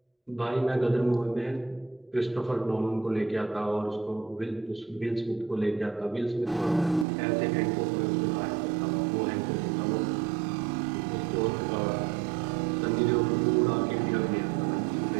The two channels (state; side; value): drops out; left; at 7.1 s